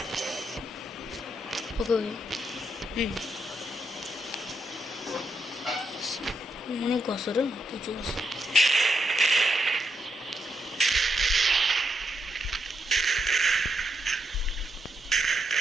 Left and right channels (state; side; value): normal; both; correlation 0.81